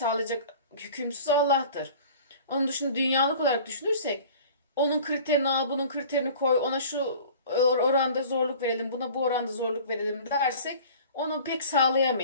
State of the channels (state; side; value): inverted; both; correlation -0.44